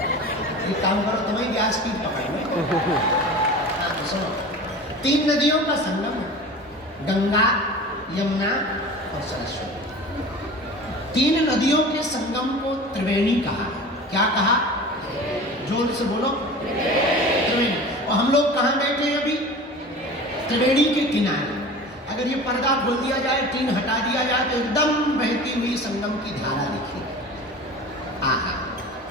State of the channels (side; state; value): both; normal; correlation 0.36